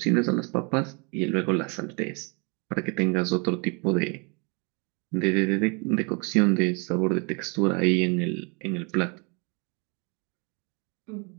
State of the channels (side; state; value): left; quieter; 32.8 dB